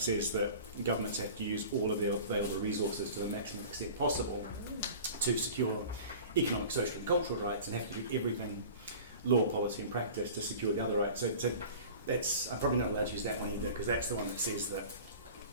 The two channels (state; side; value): inverted; both; correlation -0.40